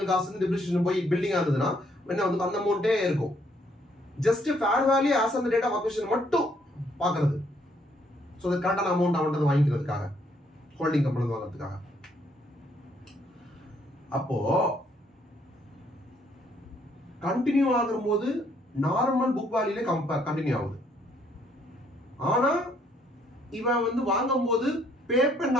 காஸ்ட் டிப்ரிசியேஷன் போய் பில்டிங்கா இருந்ததுன்னா என்ன வந்து அந்த அமௌண்ட்டே இருக்கும். Just fair value as on the date of acquisition மட்டும் பாக்குறது. சோ அது கரெக்டான அமௌண்ட் அவன்கிட்ட வாங்கிக்கிறதுக்காக ஹோல்டிங் கம்பெனி வாங்குறதுக்காக. அப்போ கண்டினியூ ஆகும்போது நார்மல் புக் வேல்யூல கண்டினியூ ஆகுது. ஆனா இவன் வந்து வாங்கும் போது பே பண்ண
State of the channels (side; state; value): both; normal; correlation 0.68